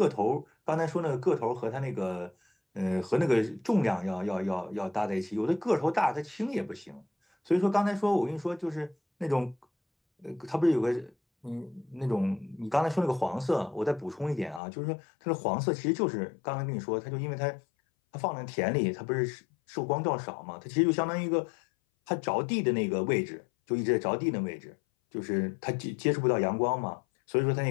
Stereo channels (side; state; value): right; drops out; at 14.6 s